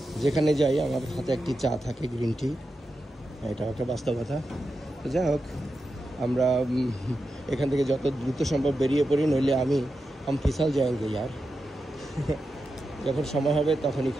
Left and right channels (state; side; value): normal; both; correlation 0.89